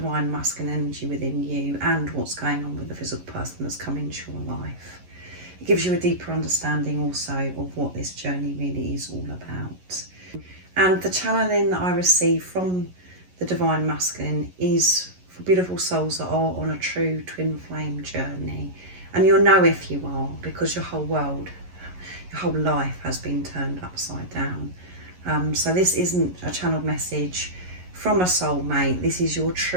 Masculine energy within you, and what's going on with the physical person that's come into your life. It gives you a deeper understanding also of what this journey really is all about. And the channeling that I receive from the Divine Masculine is for beautiful souls that are on a true twin flame journey. And you'll know if you are, because your whole world, your whole life has been turned upside down. So this isn't a channeled message from a soulmate. This is your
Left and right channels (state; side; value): late; left; 11 ms